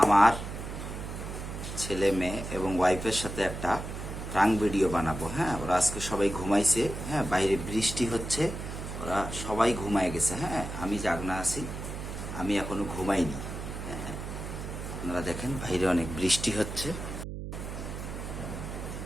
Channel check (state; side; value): noise; right; hum, 7 dB below the sound